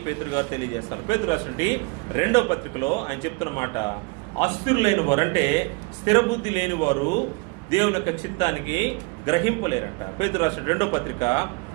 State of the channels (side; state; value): left; quieter; 27.6 dB